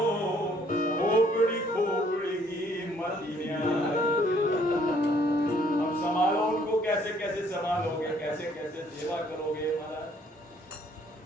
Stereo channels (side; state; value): both; normal; correlation 0.64